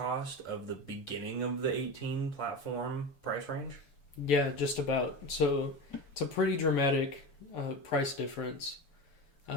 of the beginning of the 18 platform price range. Yeah, just about. So it's a pretty dramatic price difference.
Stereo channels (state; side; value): late; right; 7.0 ms